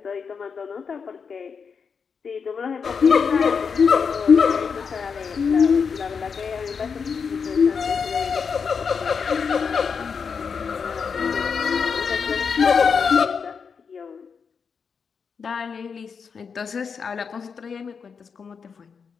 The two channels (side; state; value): right; quieter; 5.9 dB